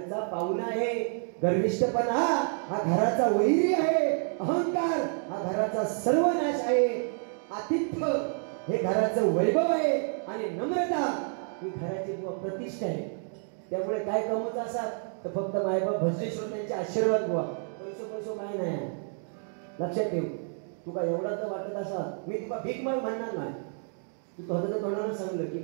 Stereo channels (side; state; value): left; silent; 55 dB below the other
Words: पाहुणा आहे. गर्विष्ठपणा हा घराचा वैरी आहे. अहंकार हा घराचा सर्वनाश आहे. आतिथ्य हे घराचं वैभव आहे आणि नम्रता ही घराची प्रतिष्ठा आहे. त्यामुळे काय कमवता असाल तर फक्त मायबाप भजनेश्वर त्यांचे आशीर्वाद बुवा. पैसो काय नाही. लक्षात ठेव. तुका एवढा तर वाटत असा मी तुका भीक माग म्हणणार नाही. तू स्वतःच्या तोंडानं सांगलं की